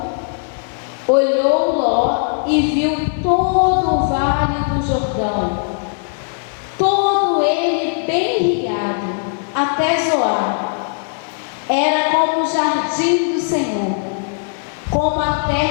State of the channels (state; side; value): silent; right; digital silence